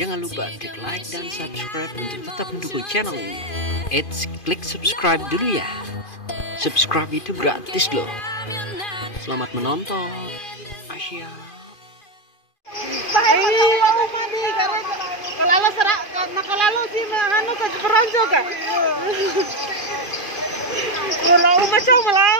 lupa klik like dan subscribe untuk tetap mendukung channel ini. Klik subscribe dulu ya. Subscribe itu gratis loh. Selamat menonton. Asia. Kalau sih anu ke peronco ka. Kalau macam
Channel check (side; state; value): right; late; 2.5 ms